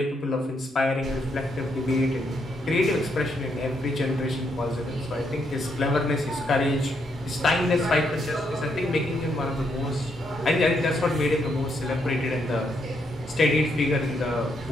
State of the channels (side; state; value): both; normal; correlation 0.76